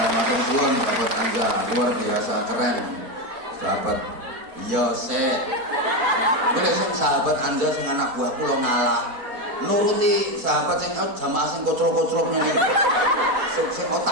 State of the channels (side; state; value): left; late; 4.5 ms